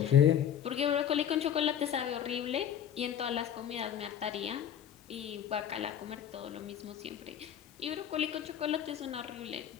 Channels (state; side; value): quieter; right; 9.5 dB